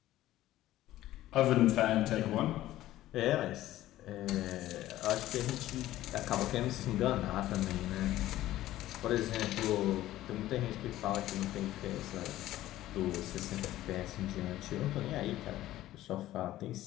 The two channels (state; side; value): quieter; right; 14.7 dB